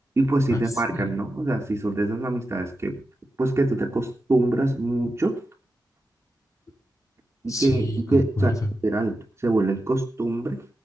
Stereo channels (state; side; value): normal; both; correlation 0.90